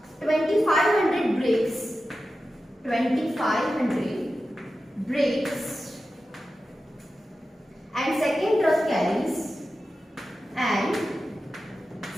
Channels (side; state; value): both; normal; correlation 0.92